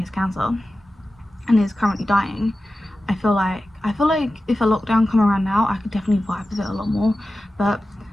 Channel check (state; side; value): normal; both; correlation 0.94